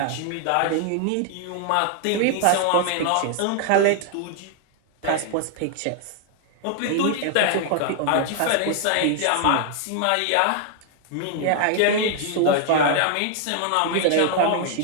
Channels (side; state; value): both; different; correlation 0.00